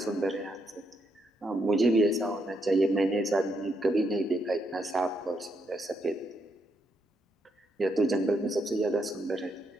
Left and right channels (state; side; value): normal; both; correlation 0.78